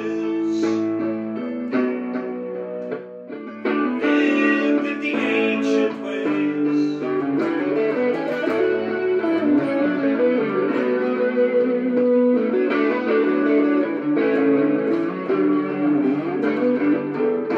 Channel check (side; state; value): both; identical; correlation 1.00